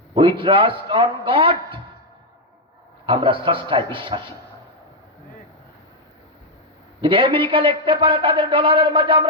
we trust on god. আমরা স্রষ্টায় বিশ্বাসী। যদি আমেরিকা লিখতে পারে তাদের ডলারের মাঝে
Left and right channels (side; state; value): both; normal; correlation 0.01